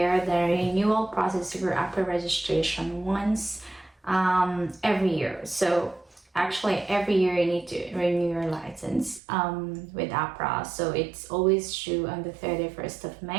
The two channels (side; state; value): left; drops out; at 9.2 s